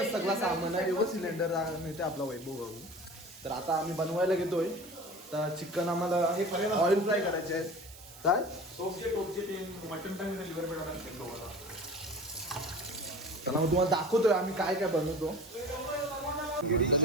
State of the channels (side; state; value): right; noise; hiss, 19 dB below the sound